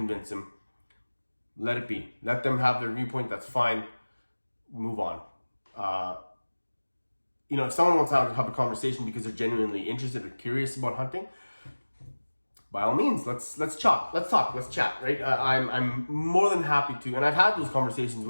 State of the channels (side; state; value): both; inverted; correlation -1.00